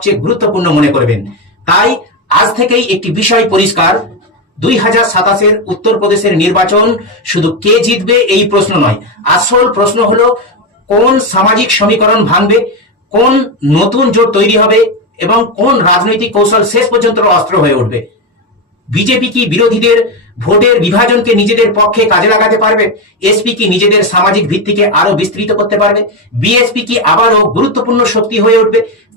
গুরুত্বপূর্ণ মনে করবেন। তাই আজ থেকেই একটি বিষয় পরিষ্কার, 2027-এর উত্তরপ্রদেশের নির্বাচন শুধু কে জিতবে এই প্রশ্ন নয়। আসল প্রশ্ন হলো কোন সামাজিক সমীকরণ ভাঙবে, কোন নতুন জোট তৈরি হবে, এবং কোন রাজনৈতিক কৌশল শেষ পর্যন্ত অস্ত্র হয়ে উঠবে। বিজেপি কি বিরোধীদের ভোটের বিভাজনকে নিজেদের পক্ষে কাজে লাগাতে পারবে? এসপি কি নিজেদের সামাজিক ভিত্তিকে আরো বিস্তৃত করতে পারবে? বিএসপি কি আবারও গুরুত্বপূর্ণ শক্তি হয়ে উঠবে?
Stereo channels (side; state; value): both; normal; correlation 0.10